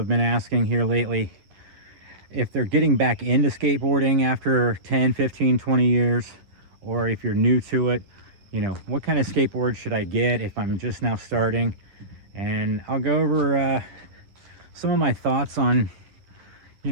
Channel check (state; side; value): late; left; 10 ms